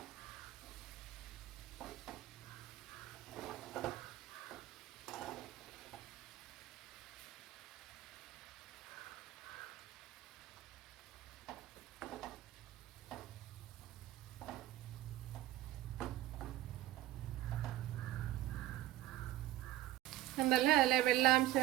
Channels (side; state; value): left; quieter; 14.7 dB